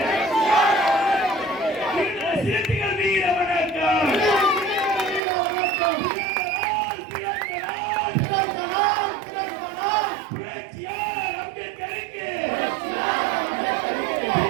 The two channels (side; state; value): left; drops out; at 5.2 s